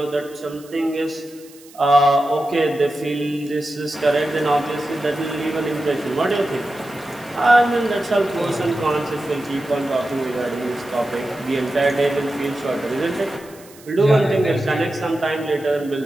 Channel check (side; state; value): right; noise; hiss, 23 dB below the sound